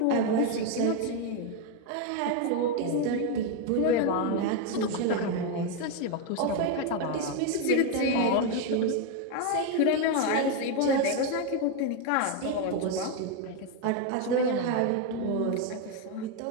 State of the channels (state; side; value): different; both; correlation 0.02